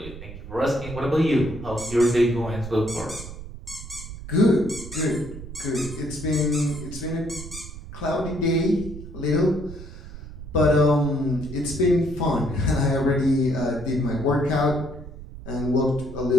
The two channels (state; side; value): noise; right; rumble, 12 dB below the sound